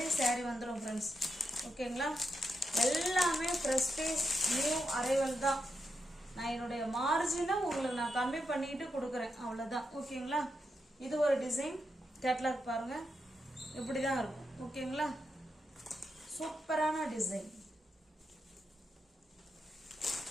சாரி வந்துடும் ஃப்ரெண்ட்ஸ். ஓகேங்களா, எல்லாமே ப்ரெஸ்டீஜ் நியூ அரைவல் தான். நான் என்னுடைய மார்ஜினை உங்களுக்கு நான் கம்மி பண்ணிட்டு கொடுக்குறேன், அவ்வளோதான். ஓகேங்களா, இது ஒரு டிசைன் கேட்லாக் பாருங்க, இப்படி தான் இருக்கும். ஓகேங்களா, சூப்பரான டிசைன்.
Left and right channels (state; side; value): normal; both; correlation 0.85